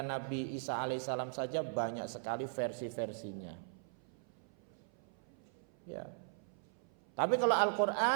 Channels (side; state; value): left; silent; 52 dB below the other